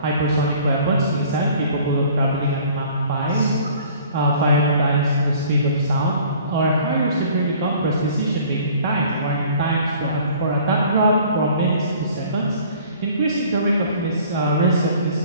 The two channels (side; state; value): both; inverted; correlation -0.51